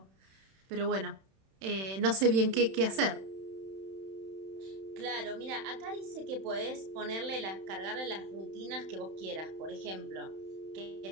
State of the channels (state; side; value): late; left; 31 ms